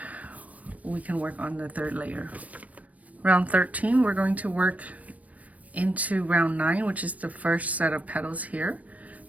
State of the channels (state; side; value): late; left; 0.069 ms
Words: we can work on the third layer. Round 13, we're going to work into round 9, which is the first set of petals here.